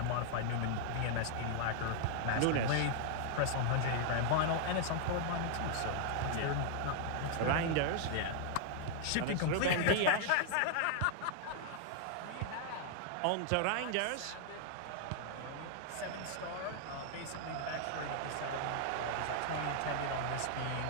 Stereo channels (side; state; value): both; different; correlation -0.01